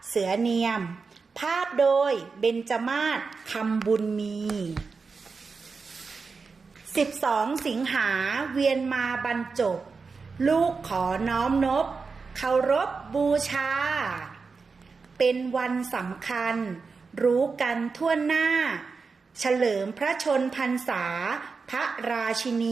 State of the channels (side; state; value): left; quieter; 4.7 dB